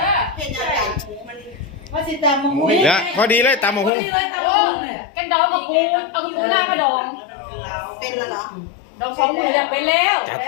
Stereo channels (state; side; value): drops out; right; at 3.9 s